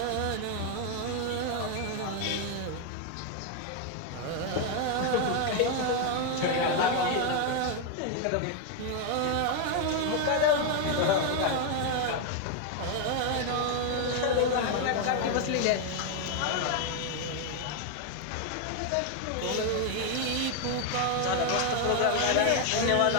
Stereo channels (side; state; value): both; different; correlation 0.01